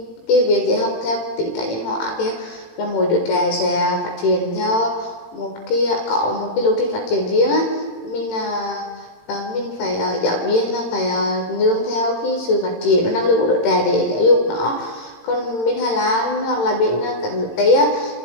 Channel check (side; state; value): right; late; 18 ms